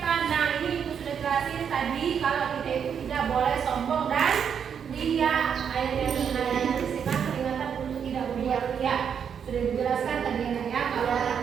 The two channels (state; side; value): quieter; left; 7.5 dB